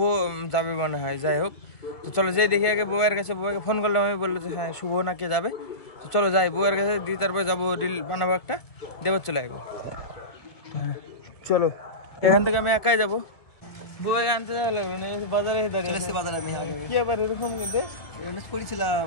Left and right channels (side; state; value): right; late; 2.0 ms